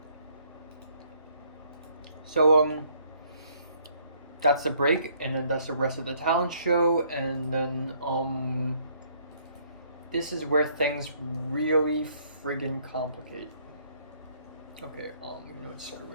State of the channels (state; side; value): inverted; both; correlation -0.66